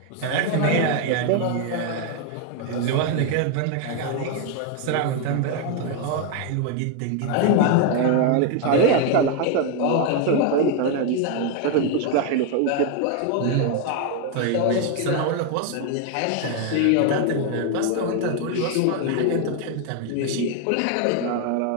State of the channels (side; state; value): both; different; correlation 0.01